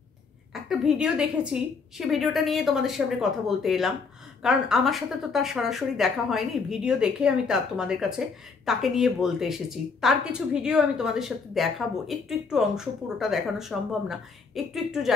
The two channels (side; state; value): right; quieter; 4.9 dB